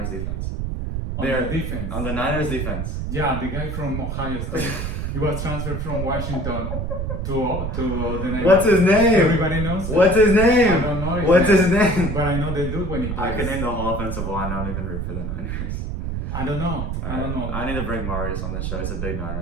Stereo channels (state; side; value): noise; right; rumble, 3 dB below the sound